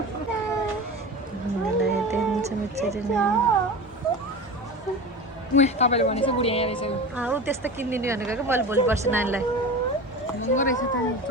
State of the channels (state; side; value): normal; both; correlation 0.30